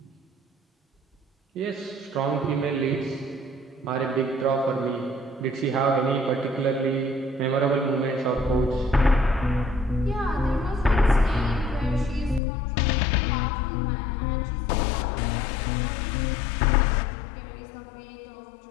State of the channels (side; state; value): right; drops out; at 12.4 s